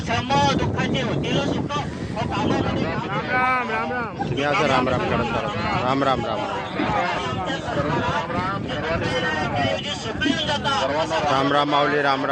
श्रम दुःखाचे होतील सुख. हो, कामामध्ये काम. या असं राम राम करत करत राम राम राम राम राम माऊली राम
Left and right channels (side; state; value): both; identical; correlation 1.00